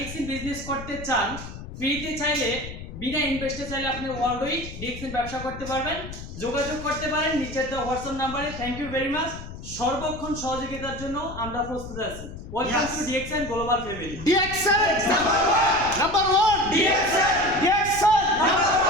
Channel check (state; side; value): noise; left; rumble, 11 dB below the sound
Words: বিজনেস করতে চান, ফ্রিতে চাইলে বিনা ইনভেস্টে চাইলে আপনি অলরেডি ডিএক্সএন ব্যবসা করতে পারবেন। যোগাযোগ করতে পারেন নিচের দেওয়া হোয়াটসঅ্যাপ নাম্বারে। Thank you very much. সর্বক্ষণ সহযোগিতার জন্য আমরা প্রস্তুত আছি। Welcome to DXN global family. DXN number 1 DXN number